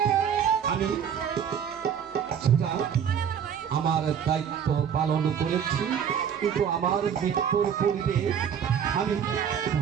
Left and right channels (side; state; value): left; quieter; 8.1 dB